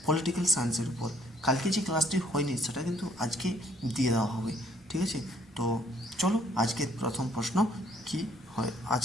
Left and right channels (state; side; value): normal; both; correlation 0.63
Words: পলিটিক্যাল সায়েন্সের উপর। কালকে যে ক্লাসটি হয়নি সেটা কিন্তু আজকে দিয়ে দেওয়া হবে, ঠিক আছে? তো চলো আজকের প্রথম প্রশ্ন কি হয়